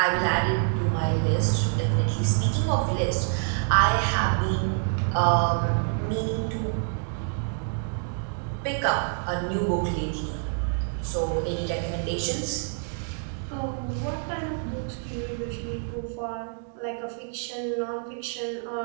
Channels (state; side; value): silent; left; 60 dB below the other